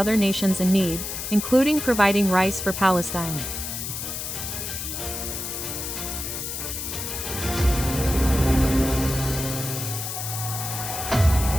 nations in need, including providing rice for Palestine.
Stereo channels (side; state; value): left; noise; hiss, 5 dB below the sound